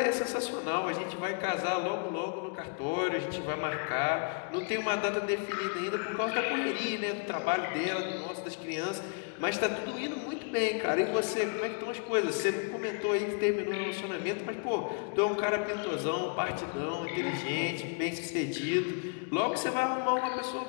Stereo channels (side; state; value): right; quieter; 38.3 dB